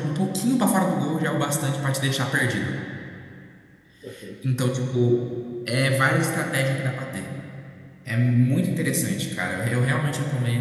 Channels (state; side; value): identical; both; correlation 1.00